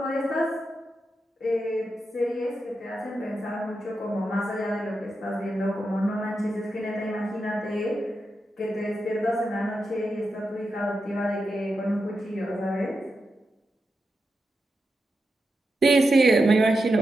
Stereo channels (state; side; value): normal; both; correlation 0.88